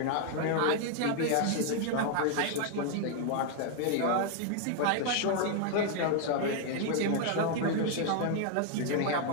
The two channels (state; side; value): different; both; correlation 0.00